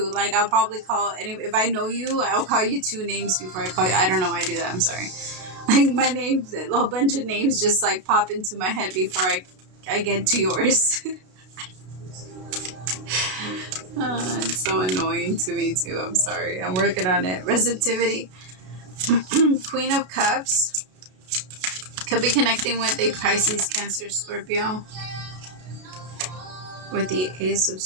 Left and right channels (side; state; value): left; late; 32 ms